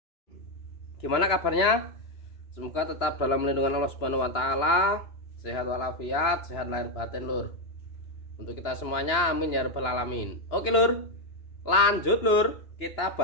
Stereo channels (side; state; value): right; late; 2.9 ms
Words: gimana kabarnya? Semoga tetap dalam lindungan Allah Subhanahu wa Ta'ala, sehat walafiat, sehat lahir batin Lur. Untuk kita semuanya, amin ya rabbal alamin. Oke Lur, lanjut Lur, kita